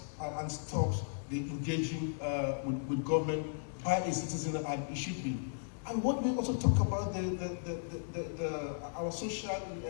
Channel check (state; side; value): silent; right; digital silence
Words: and stops the engaging with government by a citizen, and it should be. And what we also talk about our social